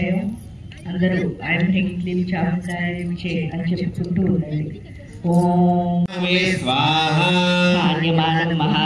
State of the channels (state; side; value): identical; both; correlation 1.00